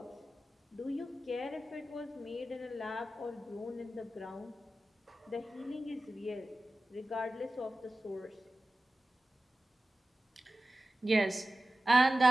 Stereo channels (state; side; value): normal; both; correlation 0.95